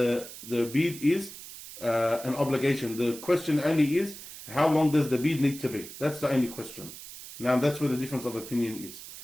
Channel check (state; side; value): noise; right; hiss, 14 dB below the sound